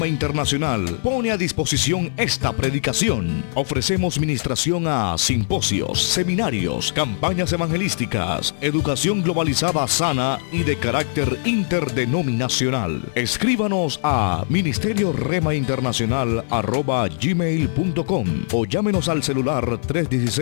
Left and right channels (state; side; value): silent; right; digital silence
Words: Internacional pone a disposición esta predicación. Ofrecemos ministración a simposios, seminarios, campañas evangelísticas, educación globalizada sana y de carácter interdenominacional. Escríbanos a ministerioremainternacional@gmail.com o llámenos al celular